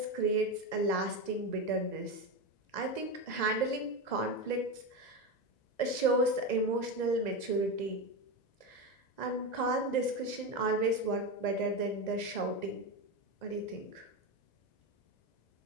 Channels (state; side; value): late; right; 2.0 ms